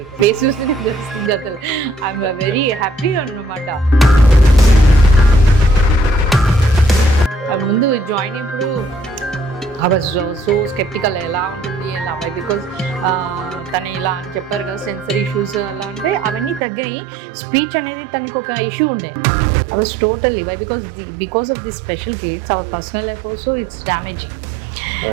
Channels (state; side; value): drops out; left; at 16.6 s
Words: good. Face చూస్తేనే తెలుస్తుంది అసలు. ఐఎమ్ వెరీ హ్యాపీ అన్నమాట. ముందు జాయిన్ అయినప్పుడు ఐ వాజ్ సో స్కెప్టికల్, ఎలా ఉంటుంది ఎలా, బికాజ్ తను ఇలా అని చెప్పారు కదా, సెన్సరీ ఇష్యూస్ అలా అంటే అవన్నీ తగ్గాయి. స్పీచ్ అనేది తనకు ఒక ఇష్యూ ఉండే. I was totally because of the special kids our personal life also it's damaging.